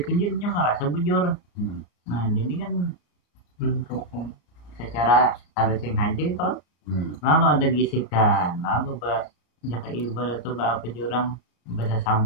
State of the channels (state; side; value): late; right; 33 ms